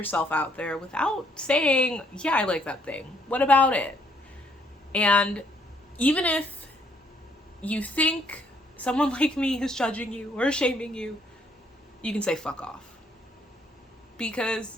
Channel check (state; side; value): normal; both; correlation 0.68